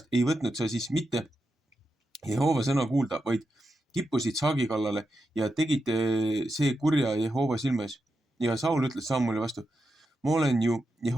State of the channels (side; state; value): both; normal; correlation 0.87